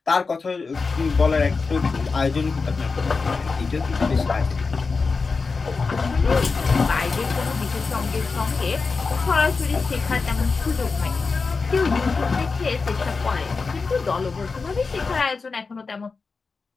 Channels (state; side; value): quieter; right; 4.5 dB